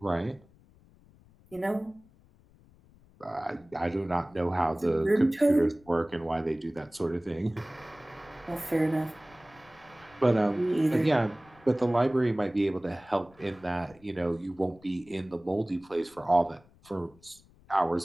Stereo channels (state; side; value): noise; left; rumble, 27 dB below the sound